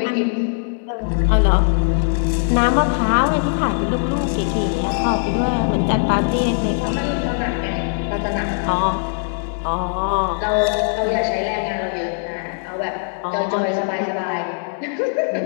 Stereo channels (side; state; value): right; silent; 62 dB below the other